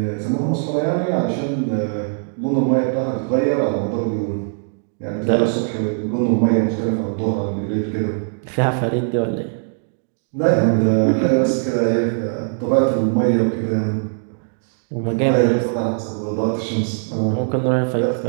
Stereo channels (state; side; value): silent; left; digital silence